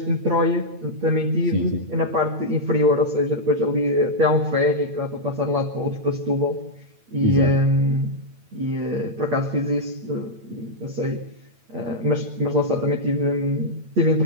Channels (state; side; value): late; left; 8.9 ms